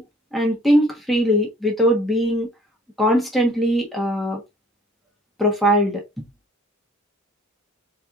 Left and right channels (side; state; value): both; normal; correlation 0.55